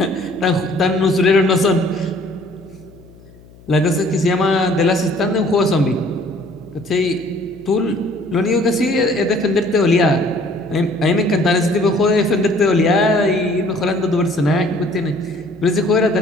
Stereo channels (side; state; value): left; noise; hum, 24 dB below the sound